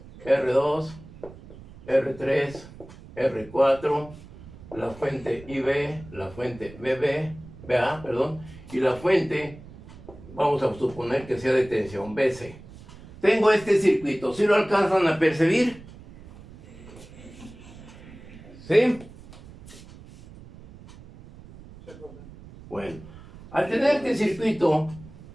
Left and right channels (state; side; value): noise; right; rumble, 18 dB below the sound